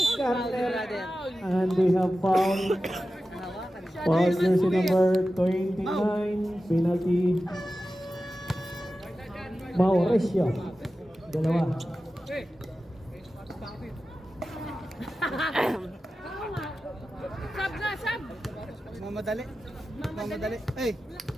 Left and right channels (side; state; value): both; normal; correlation 0.94